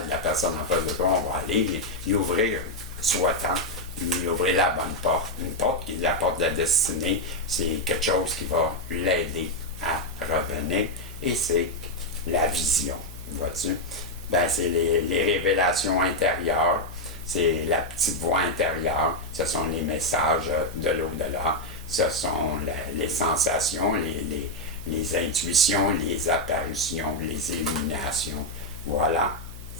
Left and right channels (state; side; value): noise; left; hum, 14 dB below the sound